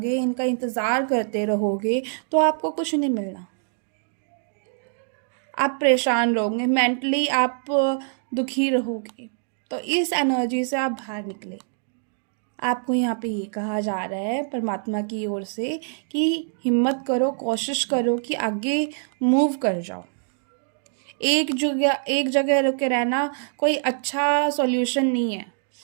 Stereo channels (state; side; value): silent; left; digital silence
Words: इनका इंतज़ार करते रहोगे, तो आपको कुछ नहीं मिलना। आप परेशान रहोगे, मेंटली आप दुखी रहोगे। तो इस एनर्जी से आप बाहर निकले। आपको यहाँ पे ये कहा जा रहा है परमात्मा की ओर से कि हिम्मत करो, कोशिश करो कि आगे मूव कर जाओ। एक जगह रुके रहना कोई अच्छा सॉल्यूशन नहीं है।